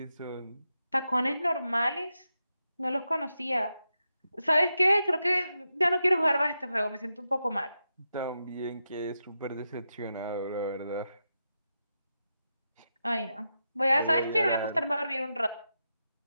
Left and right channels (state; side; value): inverted; both; correlation -0.88